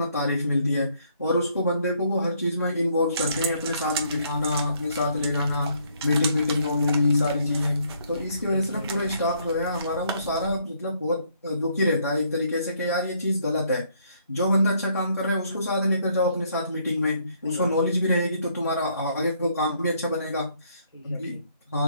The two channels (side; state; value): both; inverted; correlation -0.68